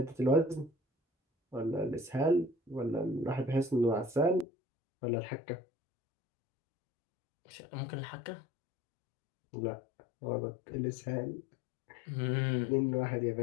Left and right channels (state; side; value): drops out; right; at 4.5 s